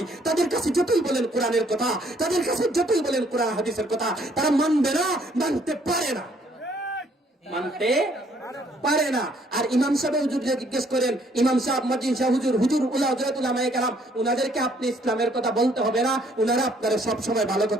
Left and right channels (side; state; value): both; normal; correlation 0.65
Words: তাদের কাছে যতই বলেন কোরআনের কথা, তাদের কাছে যতই বলেন কোরআন হাদিসের কথা, তারা মানবে না, মানতে পারে না, মানতে পারে না। আর ইমাম সাহেব হুজুরকে জিজ্ঞেস করেন, ইমাম সাহেব, মুয়াজ্জিন সাহেব, হুজুর, হুজুর, হযরত উলামায়ে কেরাম, উনাদেরকে আপনি ইসলামের কথা বলতে হবে না, উনারা আপনারা সব সময় ভালো